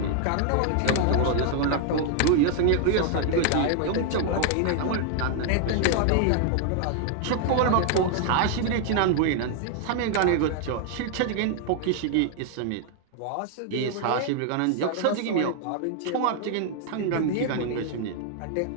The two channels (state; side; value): different; both; correlation 0.00